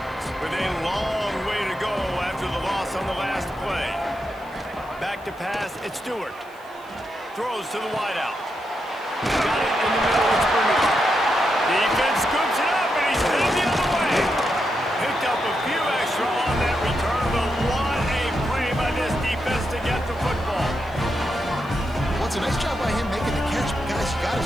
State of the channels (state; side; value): noise; left; hiss, 27 dB below the sound